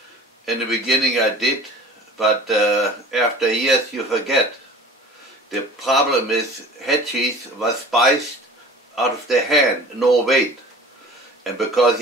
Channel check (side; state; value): both; normal; correlation 0.42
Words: In the beginning I did, but after years you forget. The problem is Headcheese was spiced out of the hand, no weight. And because